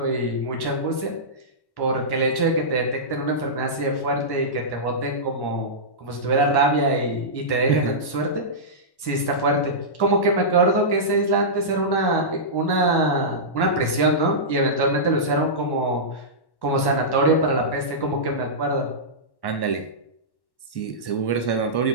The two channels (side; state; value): right; late; 1.1 ms